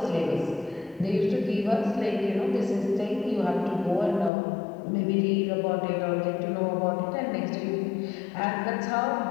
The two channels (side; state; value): right; drops out; at 4.3 s